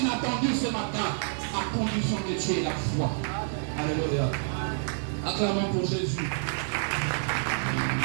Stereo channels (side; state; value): left; silent; digital silence